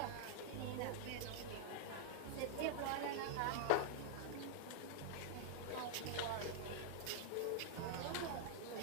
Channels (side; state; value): both; different; correlation -0.01